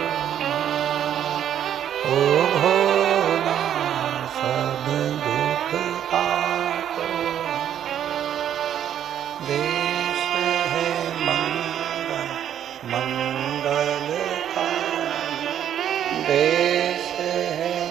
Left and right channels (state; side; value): quieter; left; 10.1 dB